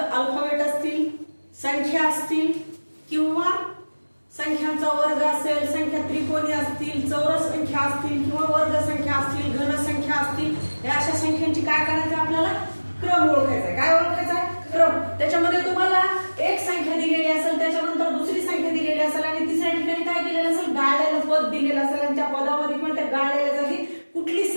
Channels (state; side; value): inverted; both; correlation -1.00